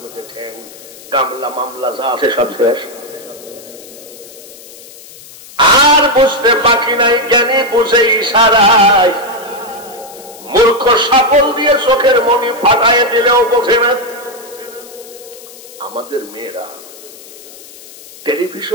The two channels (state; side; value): noise; left; hiss, 19 dB below the sound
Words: মধ্যে ঠ্যাং, গামলা মামলা যা আছে সব শেষ। আর বুঝতে বাকি নাই, জ্ঞানী বুঝে ইশারায়। মূর্খ সাপল দিয়ে চোখের মনি ফাটায় দিলেও বোঝে না। আমাদের মেয়েরা